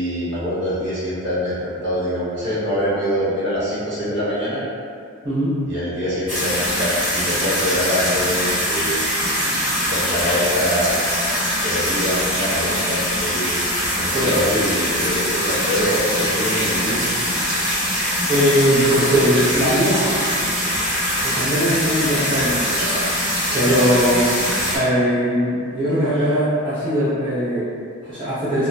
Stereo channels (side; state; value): both; normal; correlation 0.24